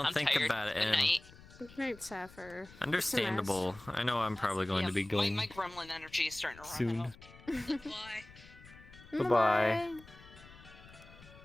it. And Great, Sapphire. understandable. I know I'm probably going to be going My gremlin energy is starting to run soon. out. Goodbye.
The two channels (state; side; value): noise; left; rumble, 21 dB below the sound